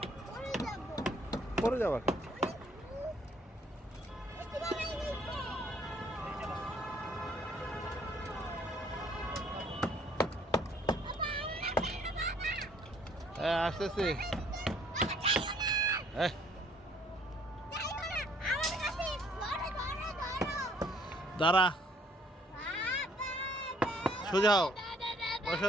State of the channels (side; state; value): both; normal; correlation 0.62